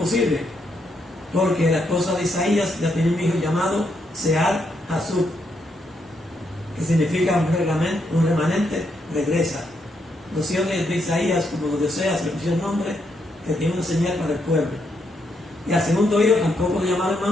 porque la esposa de Isaías ya tiene un hijo llamado Sear Hasub, que significa un remanente regresa. Los hijos de Isaías, como los de Oseas, le pusieron nombre que tiene una señal para el pueblo. Y al segundo hijo tampoco lo llamaron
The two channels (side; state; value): both; normal; correlation 0.78